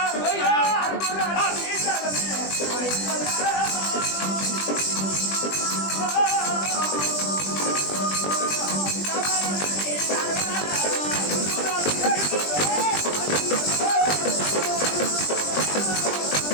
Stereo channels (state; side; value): late; right; 20 ms